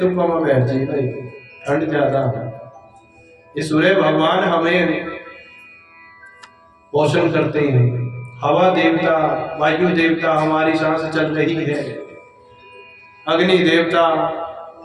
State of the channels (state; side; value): identical; both; correlation 1.00